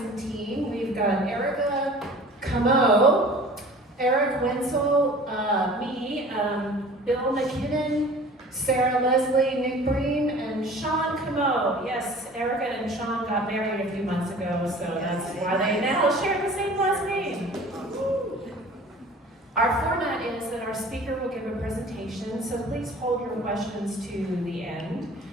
team. We've got Erica Camo, Eric Wenzel, me, Bill McKinnon, Sarah Leslie, Nick Breen, and Sean Camo. Yes, Erica and Sean got married a few months ago, so that's why they now share the same last name. Our format is that our speaker will give a presentation, so please hold your questions to the end.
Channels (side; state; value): both; normal; correlation 0.45